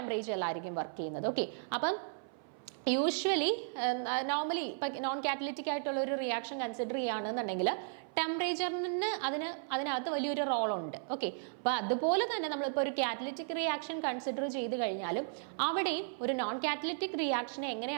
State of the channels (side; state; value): left; silent; 54 dB below the other